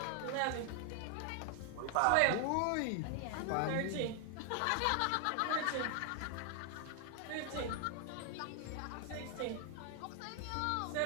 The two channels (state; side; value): different; both; correlation 0.00